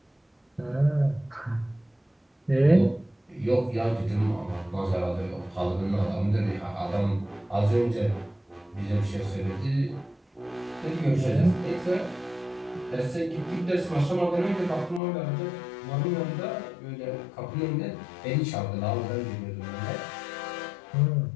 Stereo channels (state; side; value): drops out; right; at 15.0 s